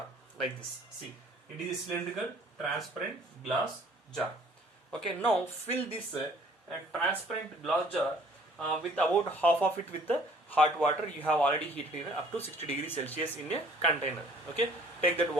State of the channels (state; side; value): normal; both; correlation 0.56